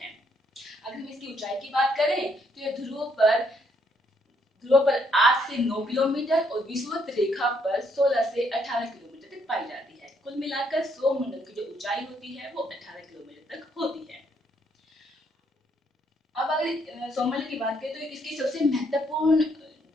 है। अगर हम इसकी ऊंचाई की बात करें तो ये ध्रुवों पर 8 से 9 किलोमीटर और विषुवत रेखा पर 16 से 18 किलोमीटर तक पाई जाती है। कुल मिलाकर सौरमंडल की जो ऊंचाई होती है वो 18 किलोमीटर तक होती है। अब अगर सौरमंडल की बात करें तो इसकी सबसे महत्वपूर्ण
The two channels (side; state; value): both; normal; correlation 0.71